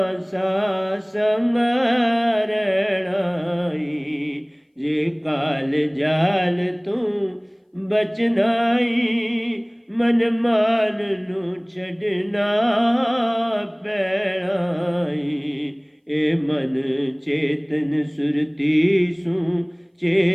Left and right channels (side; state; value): both; identical; correlation 1.00